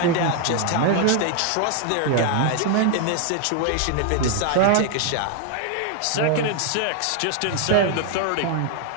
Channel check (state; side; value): different; both; correlation 0.00